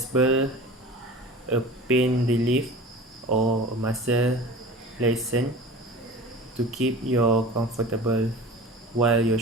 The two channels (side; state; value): both; normal; correlation 0.38